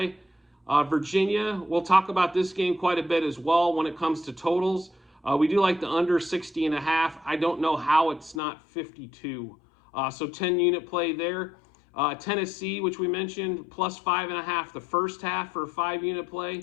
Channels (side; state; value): right; drops out; at 8.4 s